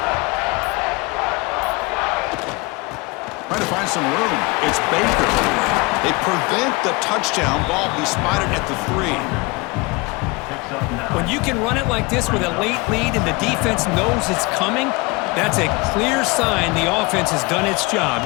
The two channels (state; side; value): quieter; right; 25.7 dB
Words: Trying to find some room. It's Baker. They prevent the touchdown ball. He spotted at the 3. When you can run it like this with a late lead and the defense knows it's coming, That's a clear sign the offense has done its job.